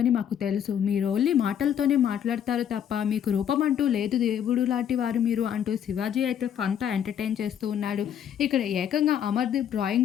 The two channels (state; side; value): quieter; right; 9.2 dB